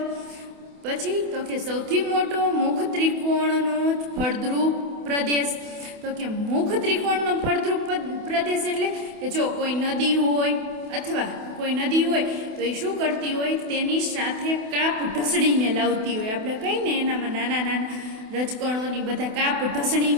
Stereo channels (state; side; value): late; left; 28 ms